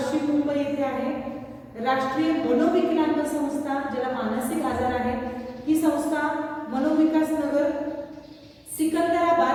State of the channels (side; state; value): both; identical; correlation 1.00